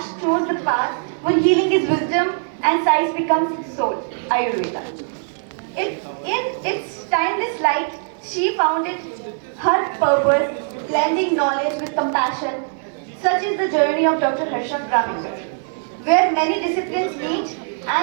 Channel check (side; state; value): left; silent; digital silence